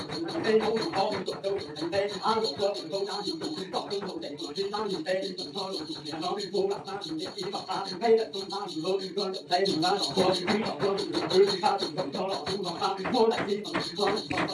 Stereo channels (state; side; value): identical; both; correlation 1.00